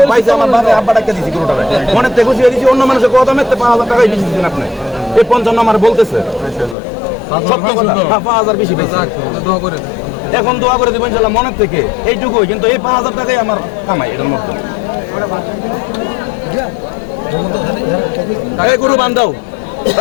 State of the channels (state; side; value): drops out; right; at 6.8 s